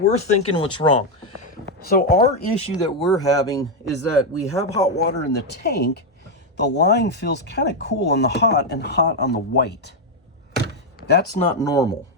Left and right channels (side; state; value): both; normal; correlation 0.02